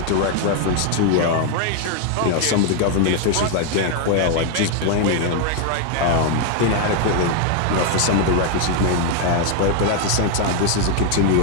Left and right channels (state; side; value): different; both; correlation 0.01